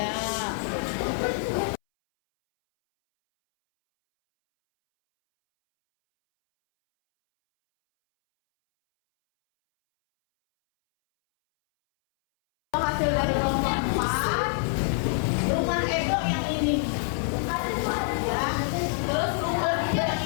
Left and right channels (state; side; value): silent; right; 61 dB below the other